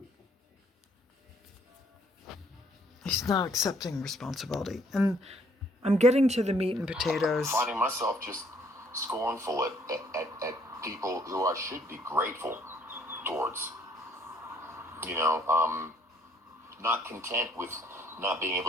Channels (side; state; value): both; normal; correlation 0.63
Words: He's not accepting responsibility. And I'm getting to the meat and potatoes. Finding myself just scornful at people who I should be grateful towards. Not content with not being